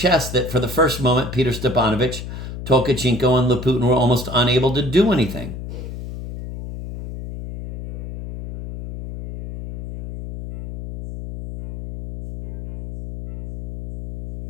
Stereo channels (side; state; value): left; noise; hum, 9 dB below the sound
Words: that for the first moment Peter Stepanovich, Tolkachenko, and Laputin were almost unable to do anything.